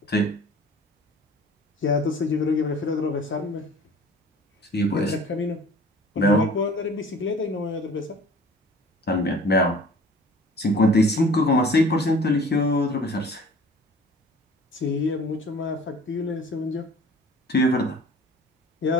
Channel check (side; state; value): both; normal; correlation 0.47